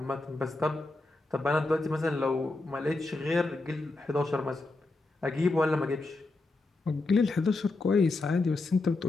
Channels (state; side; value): quieter; right; 3.2 dB